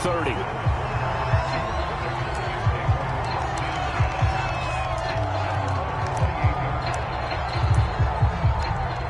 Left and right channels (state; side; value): identical; both; correlation 1.00